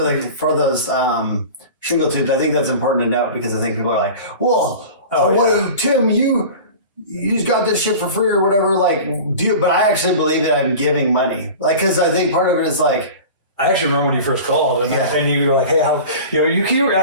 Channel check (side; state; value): both; inverted; correlation -0.36